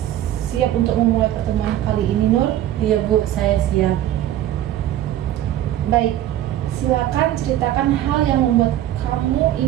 siap untuk memulai pertemuan kali ini, Nur? Iya Bu, saya siap. Baik, silakan ceritakan hal yang membuat kamu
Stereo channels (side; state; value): left; quieter; 12.6 dB